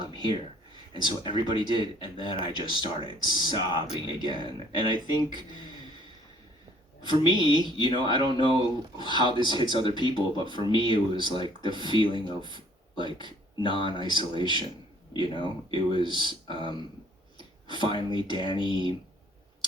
here? And so everybody did, and then I just started sobbing again. And I think, for me, I don't know how this hits other people, but for me it was like the feeling of like non-isolation, It was finally Danny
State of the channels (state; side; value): normal; both; correlation 0.59